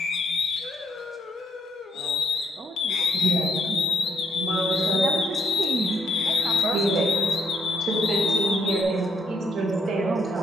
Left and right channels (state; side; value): normal; both; correlation 0.72